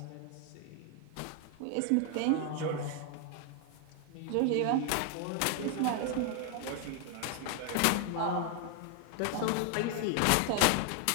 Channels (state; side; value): different; both; correlation 0.01